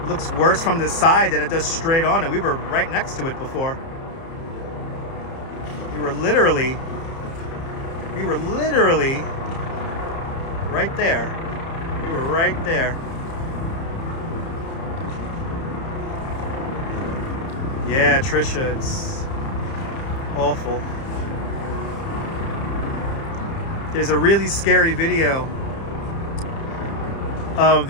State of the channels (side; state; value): right; late; 30 ms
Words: Looks worse from the side than it does straight on, and we were right next to it before. We were literally right there. We were right there. Yeah, Trisha, it's awful. There's a really scary video of